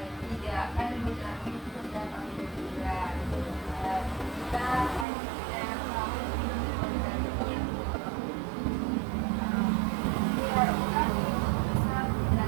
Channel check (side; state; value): left; drops out; at 5.1 s